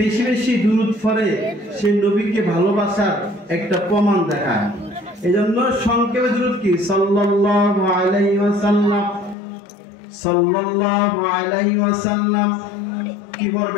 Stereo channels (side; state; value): right; drops out; at 9.3 s